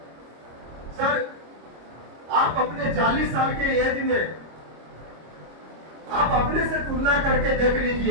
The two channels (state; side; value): late; left; 26 ms